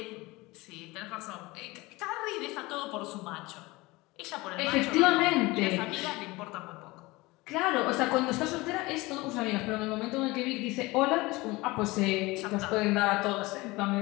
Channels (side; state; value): right; quieter; 21.8 dB